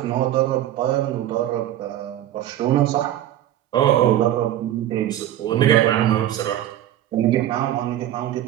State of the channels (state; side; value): quieter; left; 12.5 dB